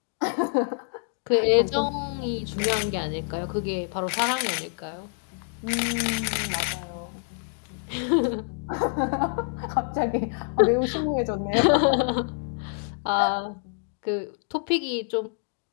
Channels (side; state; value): right; silent; 60 dB below the other